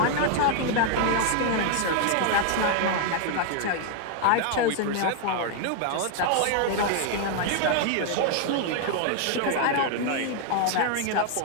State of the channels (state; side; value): different; both; correlation 0.00